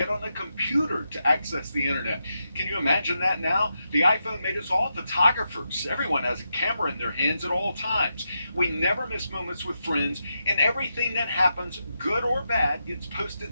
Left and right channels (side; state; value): both; inverted; correlation -0.86